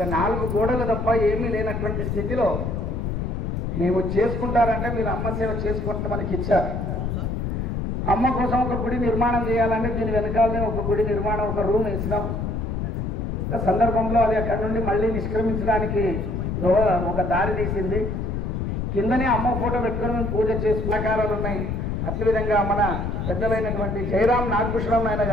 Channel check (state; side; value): noise; left; rumble, 2 dB below the sound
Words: 4 గోడలు తప్ప ఏమీ లేనటువంటి స్థితిలో మేము చేసుకుంటారంటే మీరు అమ్మ సేవ చేసుకుంటే మనకి ఇచ్చారు. అమ్మ కోసం ఒక గుడి నిర్మాణం చేయాలంటే దీని వెనకాలనే ఒక గుడి నిర్మాణం, ఒక రూమ్ వేసినాం. సందర్భంలో అది అక్కడి నుండి మళ్ళీ నిష్క్రమించడానికి ఒక దారి తీసింది. కిందనే అమ్మ ఫోటో పెట్టుకుని మేము పూజ చేసుకునే ఆకారాలు ఉన్నాయి. అదేవిధంగా మన పెద్దలైనటువంటి జయరాం నాగభూషణం నాయన